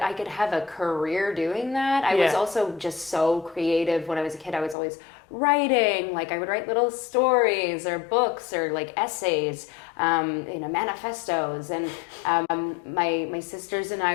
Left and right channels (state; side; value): drops out; right; at 4.8 s